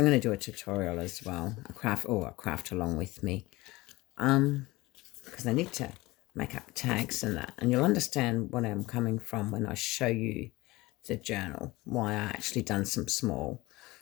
going to do a tutorial as well, a craft along with me, because I need to make up tags and that, and you'll understand what I'm coming from when I show you the journal, why I actually done some small,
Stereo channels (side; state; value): right; quieter; 20.6 dB